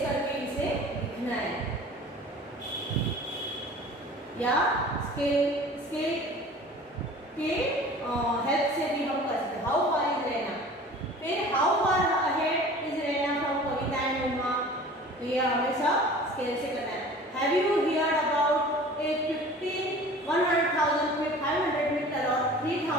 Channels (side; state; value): both; normal; correlation 0.43